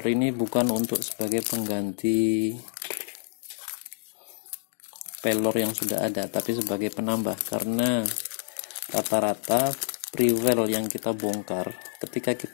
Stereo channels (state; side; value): silent; right; 60 dB below the other